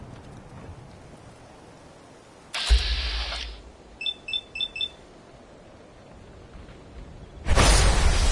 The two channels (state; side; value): identical; both; correlation 1.00